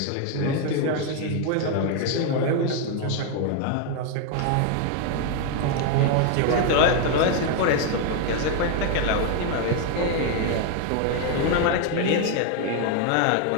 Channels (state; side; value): different; both; correlation 0.01